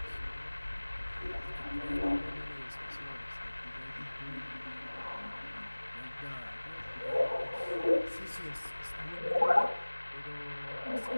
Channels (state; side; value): inverted; both; correlation -1.00